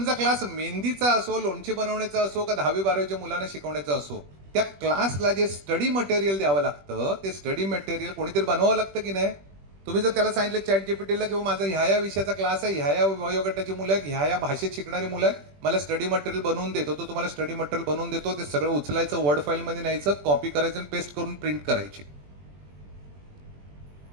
क्लास मेहंदीचा असो, लोणचे बनवण्याचा असो का 10वी-12वीच्या मुलांना शिकवण्याचा असो, त्या क्लासला जे स्टडी मटेरियल द्यावं लागतं ते स्टडी मटेरियल कोणीतरी बनवावं लागतं की नाही. तुम्ही जर त्याला सांगितलं चॅट जीपीटीला किंवा माझा ह्या विषयाचा क्लास आहे, ह्या वयोगटाची मुलं आहेत, ह्या भाषेत शिकणारी मुलं आहेत, मला स्टडी मटेरियल बनवून देतो, तो तुम्हाला स्टडी मटेरियल बनवून देतो. ते सगळं उचलायचं, वर्ड फाईलमध्ये न्यायचं, कॉपी करायचं आणि पेस्ट करून प्रिंट करायची.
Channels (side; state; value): left; late; 21 ms